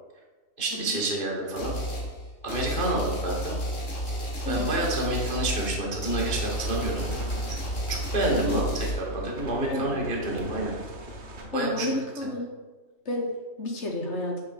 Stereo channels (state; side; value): late; right; 3.1 ms